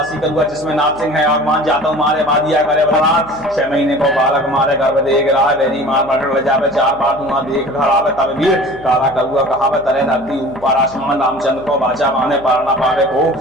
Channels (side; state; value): right; noise; hum, 21 dB below the sound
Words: करुआ जिसमें नारसिंह है भगवान जाता मारे बादिया करे बलराम 6 महीने को बालक मारे गर्भ देख रहा बेरी मार मार ले जावे 4 बार धुआं देख घर आवे तब वीर काला करुआ कहावे तरे धरती ऊपर आसमान रामचंद्र को बाचा माने पार न पावे को